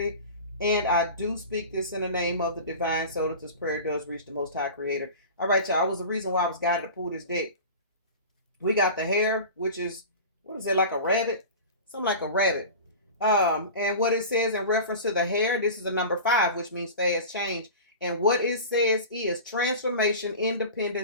And I do speak this in the name of the divine so that this prayer does reach the most high creator. All right, y'all. That was the reason why I was guided to pull this deck. We got the hare, which is, what is it, like a rabbit? Something like a rabbit. And what it says in reference to the hare, this is a number 5, which means fast change. And what it says is transformation,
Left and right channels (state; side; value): inverted; both; correlation -0.34